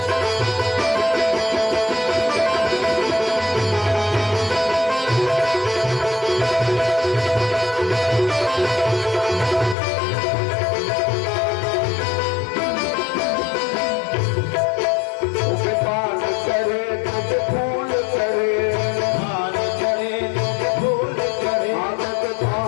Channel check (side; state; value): right; drops out; at 9.8 s